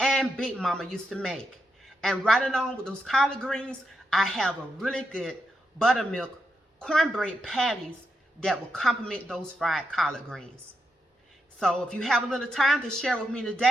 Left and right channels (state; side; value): normal; both; correlation 0.85